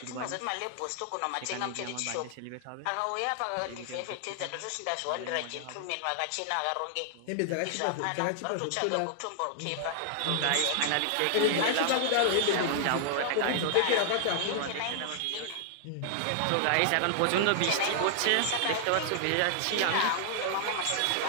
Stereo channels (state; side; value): different; both; correlation -0.01